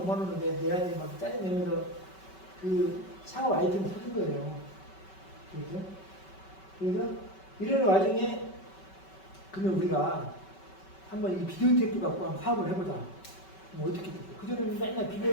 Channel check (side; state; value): right; late; 5.3 ms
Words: 5만 원을 내야지 막 짜증내면서 그 창업 아이템을 사준 거예요. 그렇죠? 그래서 이런 와중에 그러면 우리가 한번 이 비디오 테이프 갖고 한번 사업을 해보자. 뭐 어떻게 됐어? 그전에는 맨날